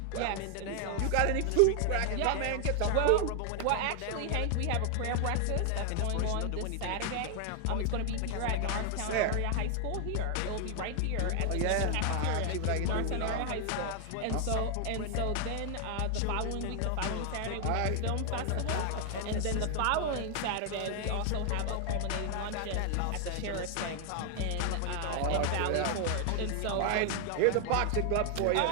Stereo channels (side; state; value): both; different; correlation 0.00